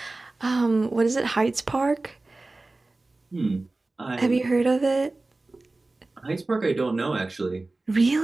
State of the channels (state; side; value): quieter; left; 3.1 dB